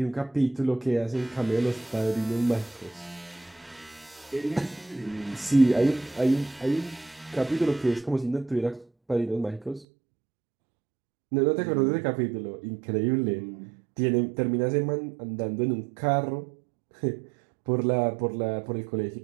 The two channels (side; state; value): left; drops out; at 9.9 s